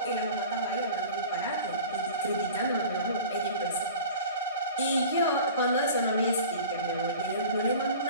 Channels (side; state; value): both; inverted; correlation -0.39